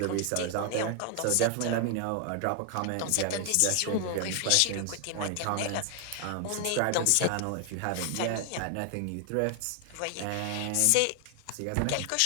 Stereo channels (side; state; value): both; different; correlation 0.00